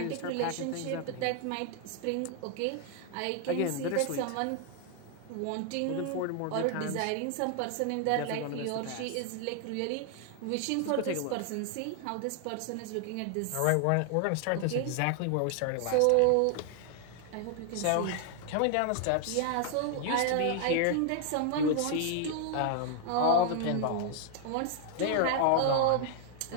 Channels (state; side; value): different; both; correlation 0.00